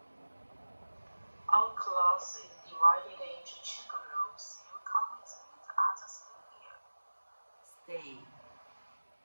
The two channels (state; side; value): inverted; both; correlation -1.00